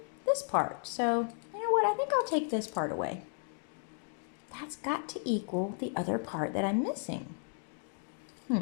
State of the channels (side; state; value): right; silent; 55 dB below the other